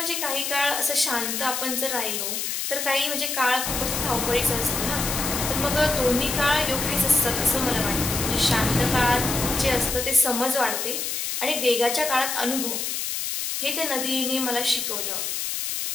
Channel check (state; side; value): noise; left; hiss, 2 dB below the sound